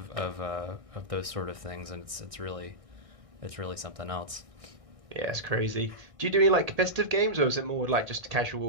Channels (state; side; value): late; left; 1.6 ms